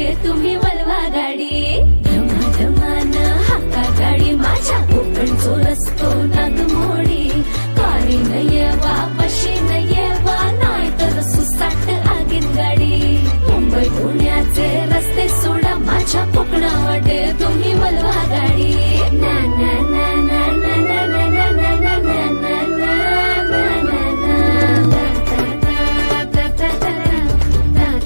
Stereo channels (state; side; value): inverted; both; correlation -1.00